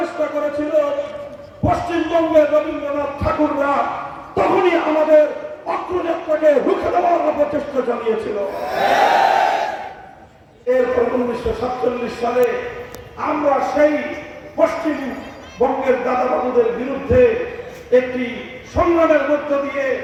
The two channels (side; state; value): both; identical; correlation 1.00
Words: করেছিল, পশ্চিমবঙ্গের রবীন্দ্রনাথ ঠাকুররা তখনই আমাদের অগ্রযাত্রাকে রুখে দেওয়ার প্রচেষ্টা চালিয়েছিল। এরপর 1947 সালে আমরা সেই পশ্চিমবঙ্গের দাদাবাবুদের বিরুদ্ধে একটি সংগ্রামের মধ্য দিয়ে